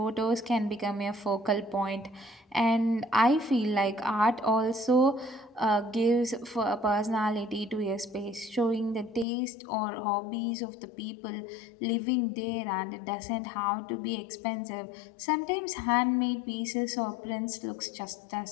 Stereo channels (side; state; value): right; drops out; at 9.2 s